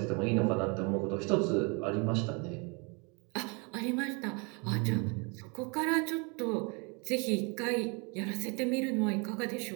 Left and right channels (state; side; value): quieter; left; 32.0 dB